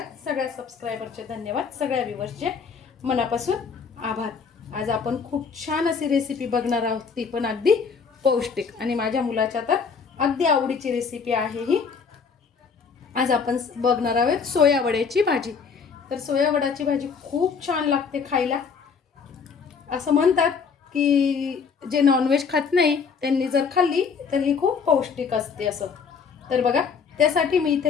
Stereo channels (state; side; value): quieter; right; 5.8 dB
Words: सगळ्या सबस्क्रायबरचे धन्यवाद, सगळ्या व्ह्यूअर्सचे मनापासून आभार। आज आपण खूप छान अशी रेसिपी बघणार आहोत, ती पण अगदी पौष्टिक आणि माझ्या मुलाच्या तर अगदी आवडीची रेसिपी आहे ही। आज आपण बघणार आहोत सोया वड्याची भाजी। तर सोया वड्याची भाजी खूप छान लागते खायला। असं म्हणतात की जे नॉनव्हेज खात नाही त्यांनी जर खाल्ली तर ही खूप पौष्टिक असते असं। तर बघा, त्यासाठी मी